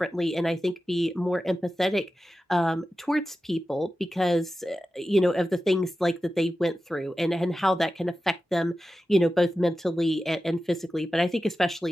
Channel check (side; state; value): both; normal; correlation 0.93